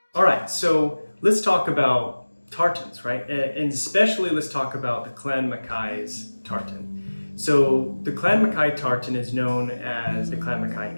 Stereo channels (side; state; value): both; inverted; correlation -1.00